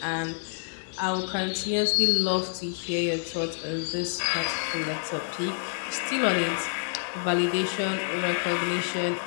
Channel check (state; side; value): silent; right; 60 dB below the other